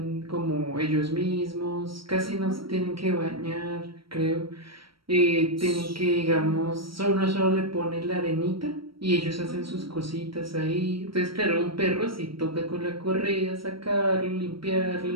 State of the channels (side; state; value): left; late; 0.75 ms